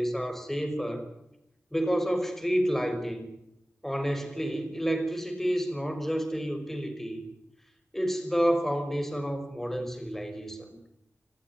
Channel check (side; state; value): both; normal; correlation 0.97